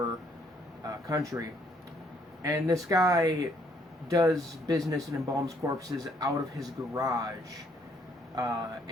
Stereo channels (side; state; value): both; normal; correlation 0.67